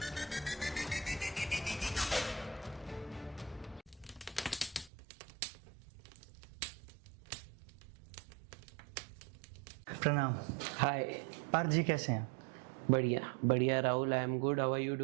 प्रणाम। हाय। पार्थ जी, कैसे हैं? बढ़िया बढ़िया Rahul, I am good, how are you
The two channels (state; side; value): drops out; left; at 4.9 s